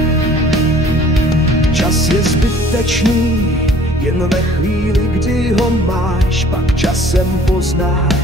Čas je zbytečný, jen ve chvíli, kdy ho máš, pak časem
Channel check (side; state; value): both; normal; correlation 0.53